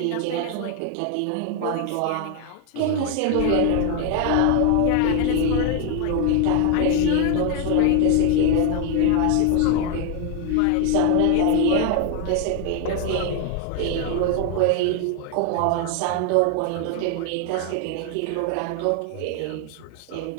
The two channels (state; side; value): different; both; correlation 0.01